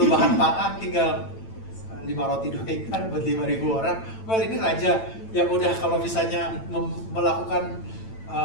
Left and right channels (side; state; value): right; late; 9.0 ms